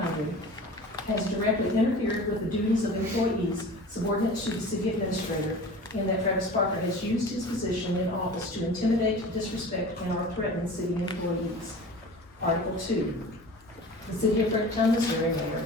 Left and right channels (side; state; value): both; normal; correlation 0.38